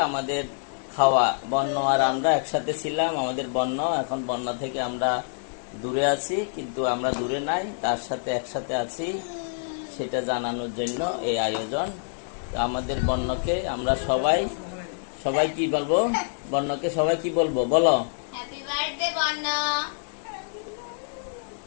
আমাদের খাওয়া। বন্য আর আমরা একসাথে ছিলাম, আমাদের বন্য এখন বন্য থেকে আমরা দূরে আছি, কিন্তু আমরা দূরে নাই, তার সাথে একসাথে আছি, সেটা জানানোর জন্য এই আয়োজন। আমাদের বন্যকে আমরা সবাই সবাই কি বলবো? বন্যকে সবাই কি বলবো বলো? হ্যাপি বার্থডে বন্য।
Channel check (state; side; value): silent; right; digital silence